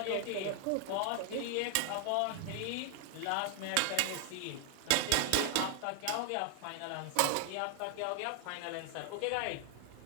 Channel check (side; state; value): both; different; correlation 0.00